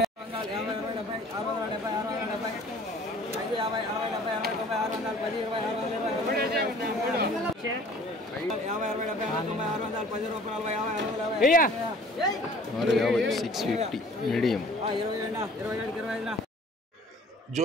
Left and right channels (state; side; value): normal; both; correlation 0.50